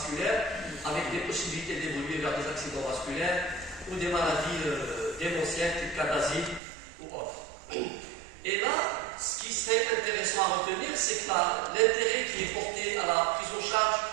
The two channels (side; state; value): left; drops out; at 6.6 s